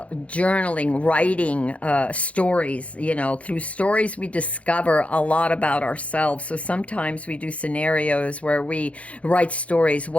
writing, stories. You know, through stories we discover a lot about ourselves. So sometimes we do scenarios where we write stories.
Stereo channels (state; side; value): late; right; 0.064 ms